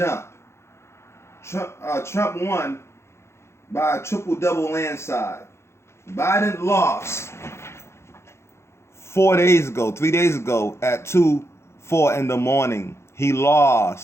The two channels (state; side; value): late; right; 0.13 ms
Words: Trump won by a triple-double landslide. Biden lost 3 days ago at 2:04 in the morning. He